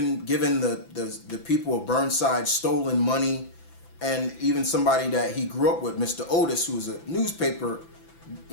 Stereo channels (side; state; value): right; late; 6.0 ms